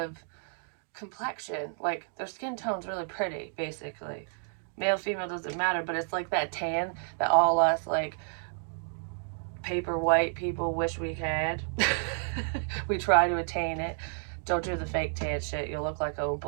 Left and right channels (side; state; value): left; silent; 57 dB below the other